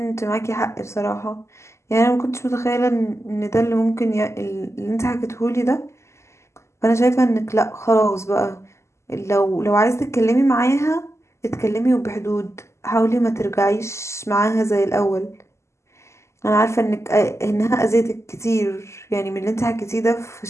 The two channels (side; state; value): right; late; 0.13 ms